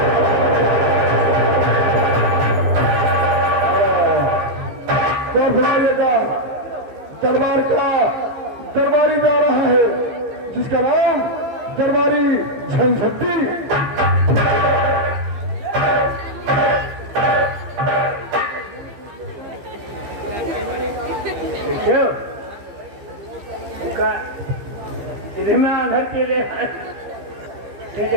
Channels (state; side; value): late; left; 15 ms